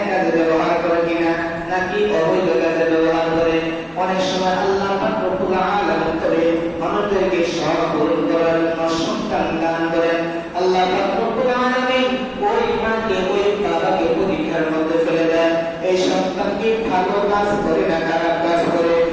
কাজে ব্যবহার করে কিনা, নাকি অবৈধ কাজে ব্যবহার করে। অনেক সময় আল্লাহ পাক রব্বুল আলামিন তবে মানুষদেরকে সব পূরণ করার জন্য সন্তান দান করেন। আল্লাহ পাক রব্বুল আলামিন ওই মাকে ওই বাবাকে পরীক্ষার মধ্যে ফেলে দেন। এই সন্তান কি ভালো কাজ করে না খারাপ কাজ করে,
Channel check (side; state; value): both; identical; correlation 1.00